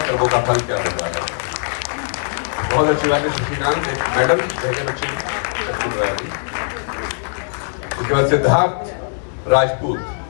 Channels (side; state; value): right; silent; digital silence